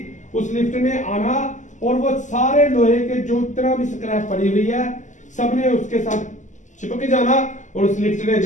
उस लिफ्ट ने आना और वो सारे लोहे के जो इतना भी स्क्रैप पड़ी हुई है सबने उसके साथ चिपक जाना और उस लिफ्ट ने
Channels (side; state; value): right; late; 0.36 ms